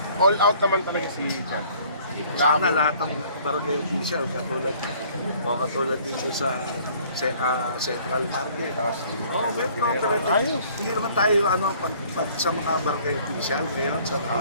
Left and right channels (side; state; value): both; inverted; correlation -0.56